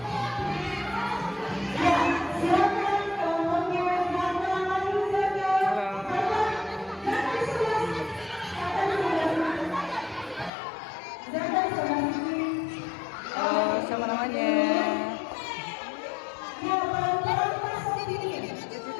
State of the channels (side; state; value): right; drops out; at 10.5 s